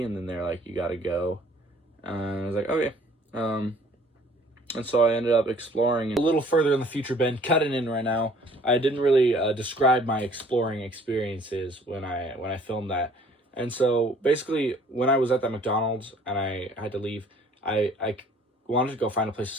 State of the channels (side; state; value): both; normal; correlation 0.56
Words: and then they're like, you gotta go. And I was like, okay. And so I ended up exploring a little further in the future. Ben, cutting in right now. I didn't really describe my exploring experiences when I filmed that. And so basically when I was at that McDonald's and I had to leave, I wanted to go find a place